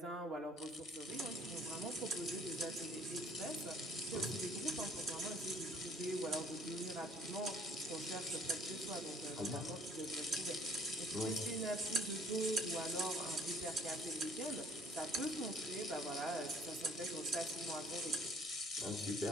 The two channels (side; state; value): both; normal; correlation 0.57